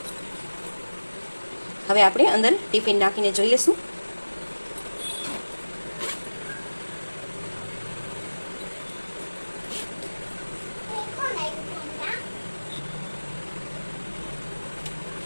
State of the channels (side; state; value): both; inverted; correlation -1.00